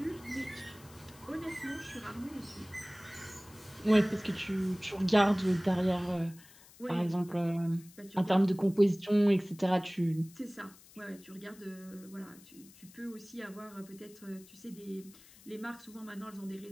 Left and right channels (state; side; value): noise; left; hiss, 23 dB below the sound